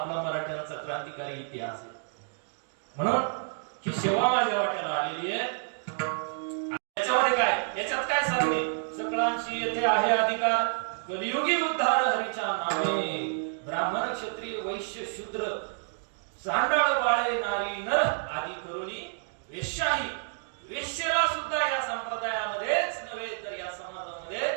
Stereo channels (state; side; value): silent; left; digital silence